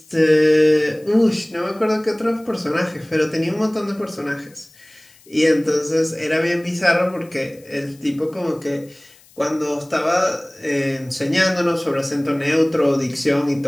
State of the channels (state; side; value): noise; left; hiss, 28 dB below the sound